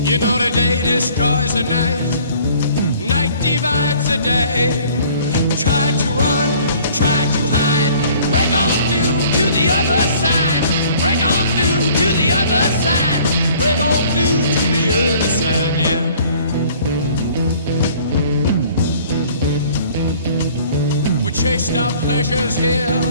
You know the day destroys the night, night divides the day. Try to run, try to hide, break on through to the other side. Break on through to the other side. Break on through to the other side, yeah. We chased our pleasures here,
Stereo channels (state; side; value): inverted; both; correlation -0.54